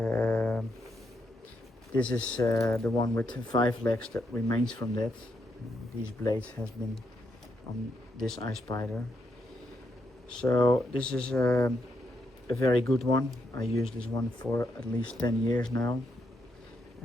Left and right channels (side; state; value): both; normal; correlation 0.80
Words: this is the one with 5 legs that remains from that. These blades has been on this ice spider. So this is a very good one. I use this one for at least 10 years now,